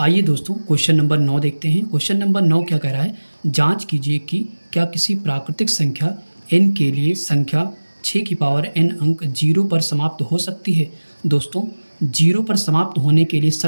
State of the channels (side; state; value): both; inverted; correlation -1.00